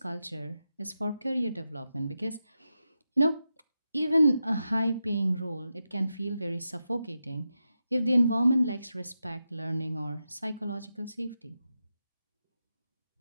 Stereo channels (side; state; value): both; inverted; correlation -0.89